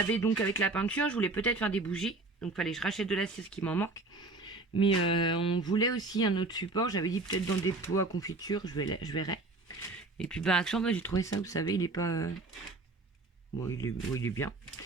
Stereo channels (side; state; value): left; quieter; 3.4 dB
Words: donc avec la peinture, je voulais peut-être faire des bougies. Donc fallait que je rachète de la cire, ce qui m'en manque. Mais on voulait aussi un autre support. J'avais dit peut-être dans des pots à confiture, je verrai. Et puis bah Action, j'ai trouvé ça, vous savez, il est pas... Bon, il est bien.